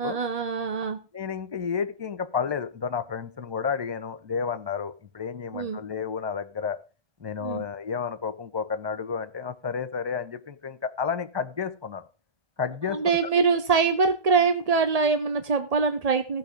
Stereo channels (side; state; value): left; late; 1.8 ms